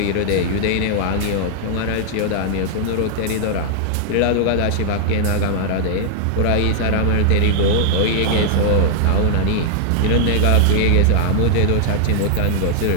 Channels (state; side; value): different; both; correlation 0.00